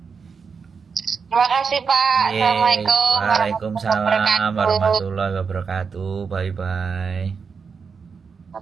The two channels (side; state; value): left; quieter; 5.6 dB